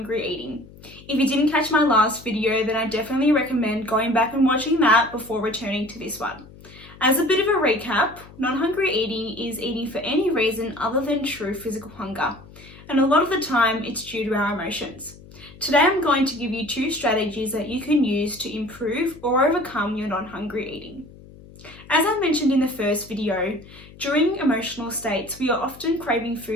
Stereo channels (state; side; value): noise; left; hum, 20 dB below the sound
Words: eating. If you didn't catch my last video, then I definitely recommend going back and watching that before returning to this one. As a bit of a recap, non-hungry eating is eating for any reason other than true physical hunger, and a lot of the time it's due to our emotions. Today I'm going to give you 2 strategies that you can use to improve or overcome your non-hungry eating. As I mentioned in the first video, during emotional states, we are often craving